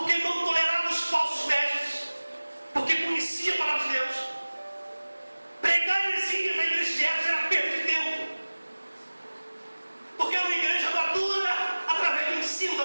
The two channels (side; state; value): both; inverted; correlation -1.00